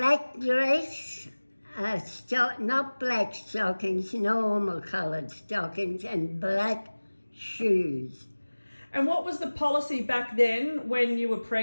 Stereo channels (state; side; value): inverted; both; correlation -1.00